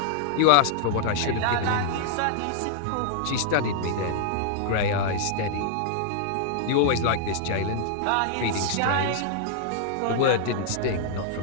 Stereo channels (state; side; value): different; both; correlation -0.01